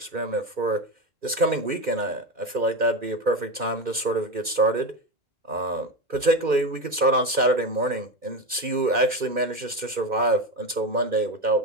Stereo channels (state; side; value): late; left; 2.1 ms